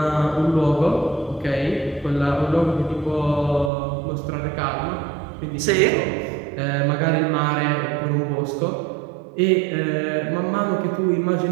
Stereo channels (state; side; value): drops out; left; at 3.7 s